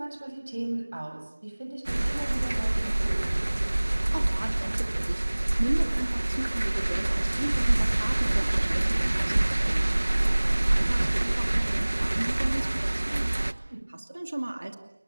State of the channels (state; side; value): inverted; both; correlation -1.00